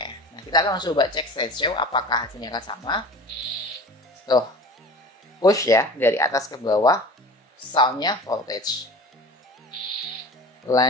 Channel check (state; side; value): normal; both; correlation 0.38